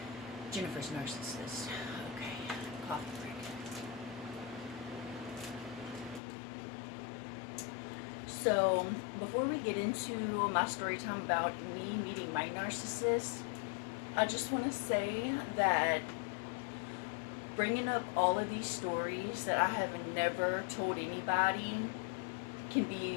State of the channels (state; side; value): drops out; right; at 6.2 s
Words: Jennifer's narcissist. Okay, coffee break. So, before we get into my story time about me meeting my narcissist, I just want to say that bringing up all of these stories that I have never told anybody can